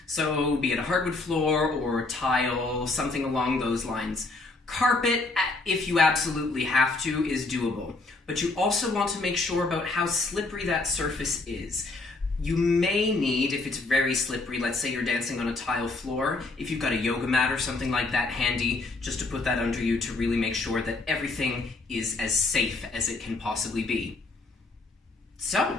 So be it a hardwood floor or tile, something along those lines. Carpet, if you absolutely have to, is doable. But you also want to make sure about how slippery that surface is. You may need, if it's very slippery, let's say you're dancing on a tile floor, if you've got a yoga mat or something like that handy, just to put that under you to really make sure that everything is as safe as it can possibly be.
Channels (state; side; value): quieter; right; 3.4 dB